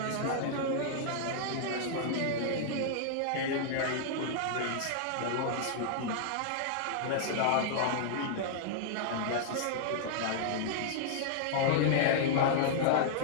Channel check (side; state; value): both; different; correlation -0.01